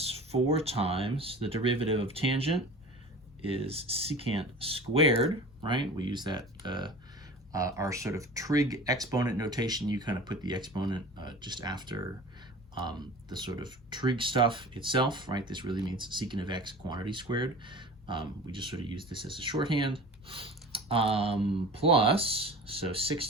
4 times the derivative of tangent is secant squared, right? We use that, our sort of trig exponent notation. You kind of put the exponent just after the sort of trig stuff itself, right? This really means secant of x quantity squared. We just sort of use this as a shorthand. Plus, so 6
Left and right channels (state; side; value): normal; both; correlation 0.38